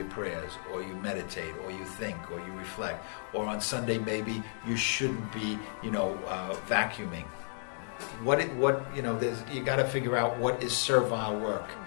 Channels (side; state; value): right; silent; digital silence